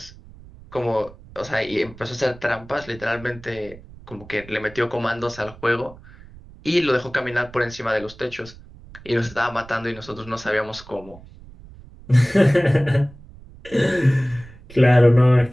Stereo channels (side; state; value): right; noise; rumble, 20 dB below the sound